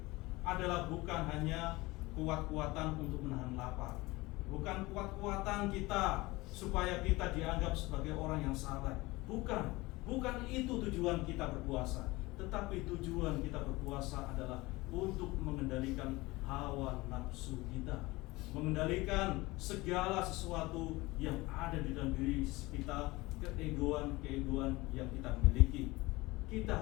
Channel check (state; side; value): quieter; right; 21.4 dB